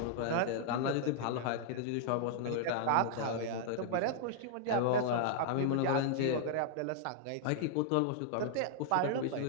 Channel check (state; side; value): different; both; correlation -0.01